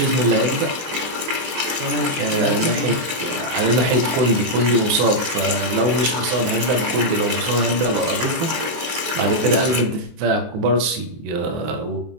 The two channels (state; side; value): late; left; 23 ms